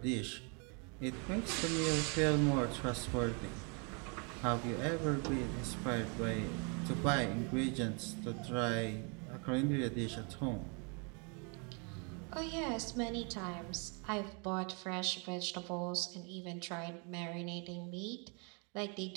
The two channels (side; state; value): left; quieter; 35.3 dB